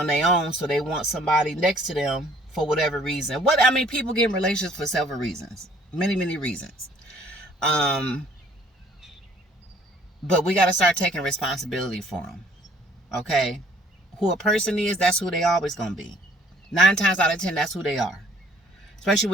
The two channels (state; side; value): normal; both; correlation 0.58